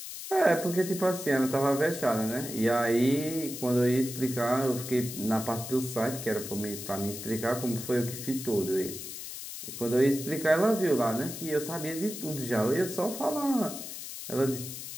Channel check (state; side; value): noise; left; hiss, 9 dB below the sound